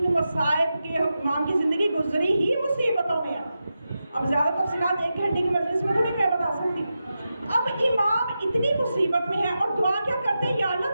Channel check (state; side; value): inverted; both; correlation -0.90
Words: مصائب کے امام کی زندگی گزری ہی مصیبتوں میں. اب زیادہ تفصیلات 1 گھنٹے کی مجلس میں تو نہیں میں بتا سکتی. اب امام اتنی مصیبت میں ہے اور دعا کیا کرتے ہیں, یا